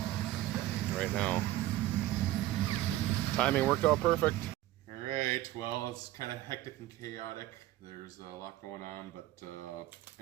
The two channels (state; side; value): quieter; left; 15.0 dB